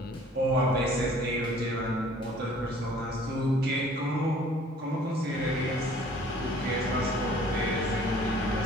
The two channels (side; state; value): both; normal; correlation 0.53